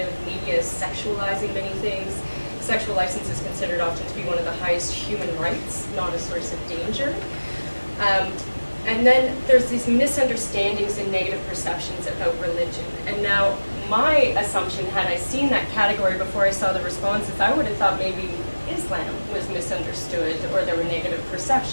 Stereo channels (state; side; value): inverted; both; correlation -1.00